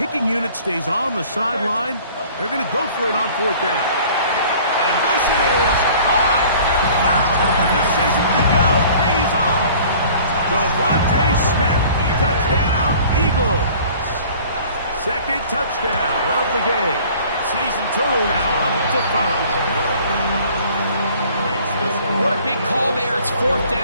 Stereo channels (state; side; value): inverted; both; correlation -0.50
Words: unit stays on the sideline, they're going to go for it on 4th down. And this is caught. The decision to go pays off. Devontae Smith, touchdown Eagles. 2nd touchdown of the game. Season total now up to 5. What a big call there. It's 4th